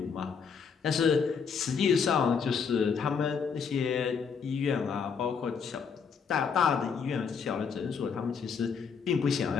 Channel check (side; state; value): right; quieter; 6.2 dB